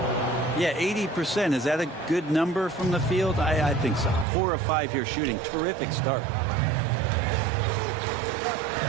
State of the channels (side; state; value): left; drops out; at 4.2 s